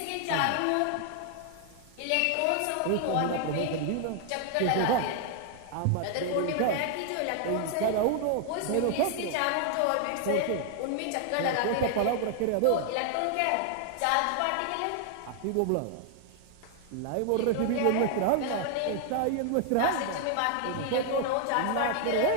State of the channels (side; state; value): both; different; correlation 0.00